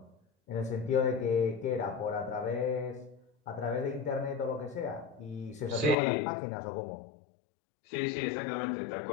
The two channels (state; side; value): drops out; right; at 6.0 s